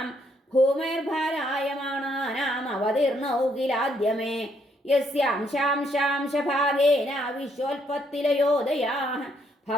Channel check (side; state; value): both; normal; correlation 0.72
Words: ഭൂമിർഭാരായമാണാനാം അവതീർണൗ കിലാദ്യമേ യസ്യാംശാംശാംശഭാഗേന വിശ്വോൽപത്തിലയോദയാഃ